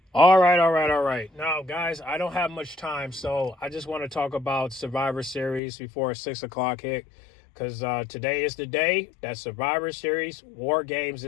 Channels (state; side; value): drops out; right; at 5.6 s